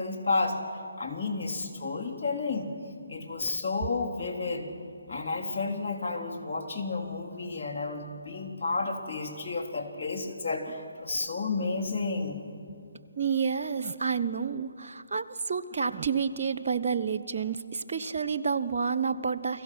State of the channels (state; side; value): inverted; both; correlation -0.67